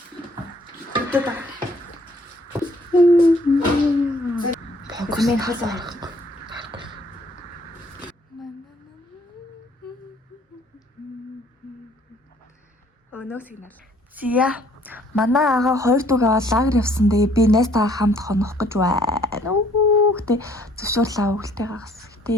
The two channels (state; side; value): normal; both; correlation 0.61